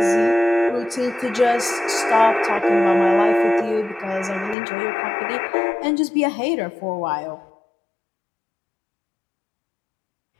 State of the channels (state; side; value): drops out; right; at 4.5 s